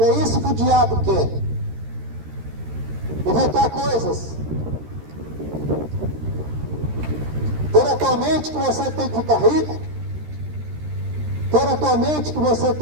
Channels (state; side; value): late; left; 13 ms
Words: é isso que o diabo quer. Inventar coisas. Ter a tua mente que você tem que ficar rico. Ter a tua mente que você